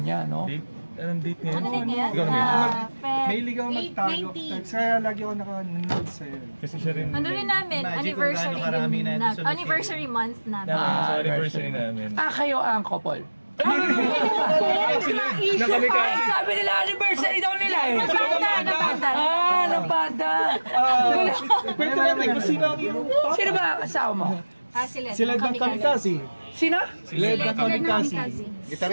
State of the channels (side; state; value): both; inverted; correlation -1.00